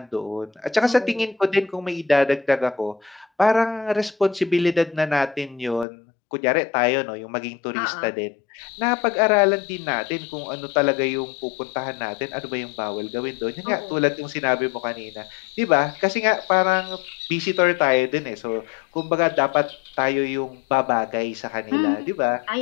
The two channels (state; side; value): drops out; right; at 5.9 s